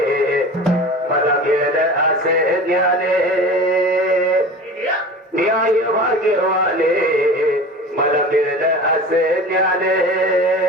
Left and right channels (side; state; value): both; normal; correlation 0.36